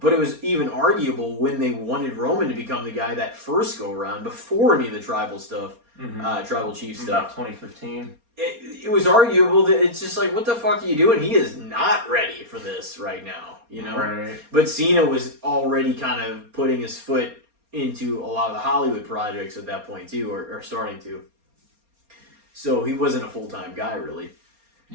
it was even arguable when they wanted Roman to become the guy that first go around before any of the tribal stuff, tribal chief stuff. About 2015. It was arguable that it's just like, what the fuck are you doing? He is not ready for this right now, you know? Right. But Cena was already kind of putting his foot into a lot of the Hollywood projects at that point too, or starting to. So he wasn't a full-time guy really.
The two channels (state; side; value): late; left; 4.3 ms